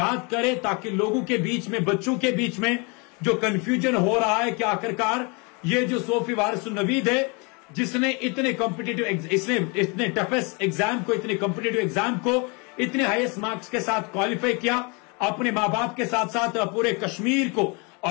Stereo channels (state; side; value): quieter; right; 31.5 dB